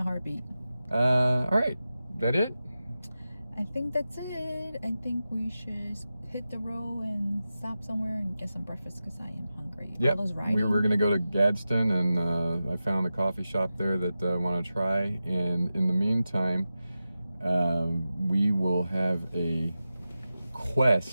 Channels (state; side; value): inverted; both; correlation -0.93